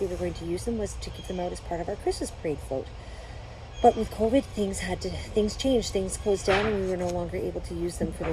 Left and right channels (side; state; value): both; identical; correlation 1.00